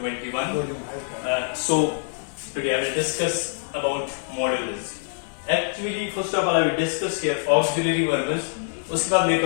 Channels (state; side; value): silent; right; 62 dB below the other